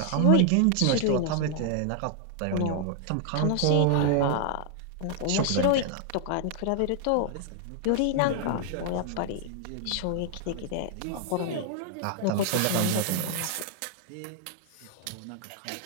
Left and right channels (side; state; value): both; different; correlation 0.00